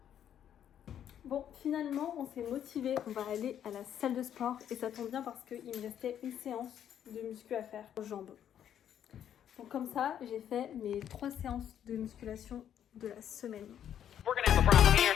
Bon, finalement on s'est motivé, on va aller à la salle de sport et ça tombe bien parce qu'il me restait une séance de muscu à faire aux jambes. Donc comme ça, j'ai fait mes 3 séances de musculation de la semaine.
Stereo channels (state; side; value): quieter; right; 9.8 dB